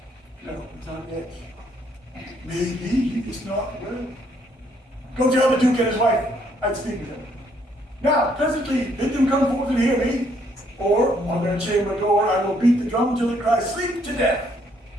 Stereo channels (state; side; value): normal; both; correlation 0.68